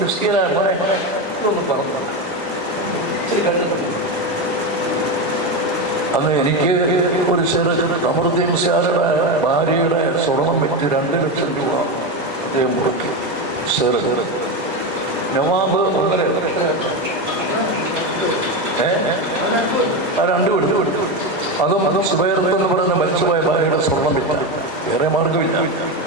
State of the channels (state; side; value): normal; both; correlation 0.15